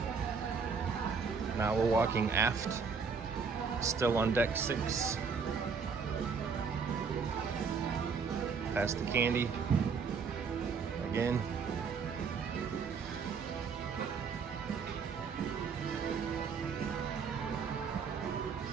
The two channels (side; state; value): left; quieter; 5.6 dB